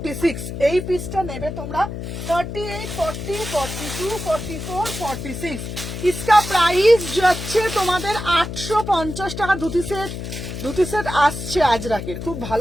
এই পিসটা নেবে তোমরা। 38, 40, 42, 44, 46 इसका प्राइस যাচ্ছে তোমাদের 850 টাকা। ধুতি সেট আসছে আজরাকের, খুব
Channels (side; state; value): left; noise; hum, 7 dB below the sound